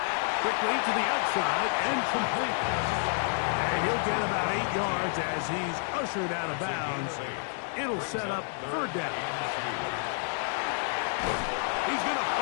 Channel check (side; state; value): right; silent; 56 dB below the other